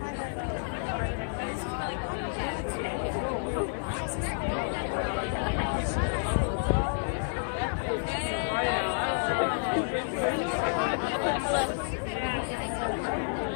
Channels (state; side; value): silent; right; digital silence